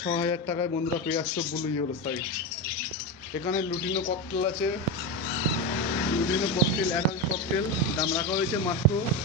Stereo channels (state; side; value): normal; both; correlation 0.16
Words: টাকায় বন্ধুরা পেয়ে আসছো ব্লু ইয়েলো সাইড। এখানে লুটিনো ককটেল আছে। লুটিনো ককটেল, অ্যাডাল্ট ককটেল দাম রাখা হয়েছে মাত্র